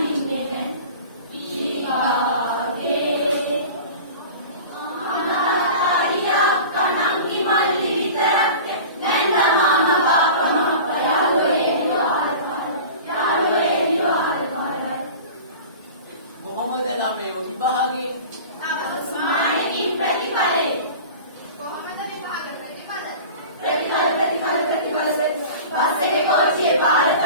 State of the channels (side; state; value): both; inverted; correlation -0.37